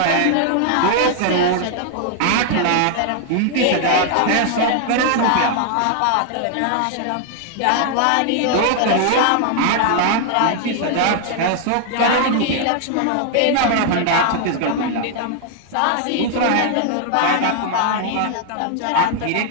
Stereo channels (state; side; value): different; both; correlation 0.00